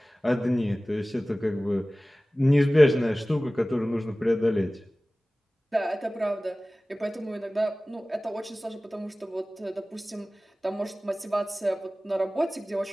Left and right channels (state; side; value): normal; both; correlation 0.98